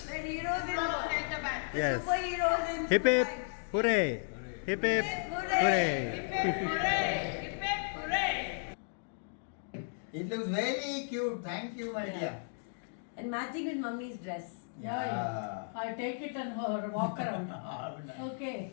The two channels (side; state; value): right; silent; digital silence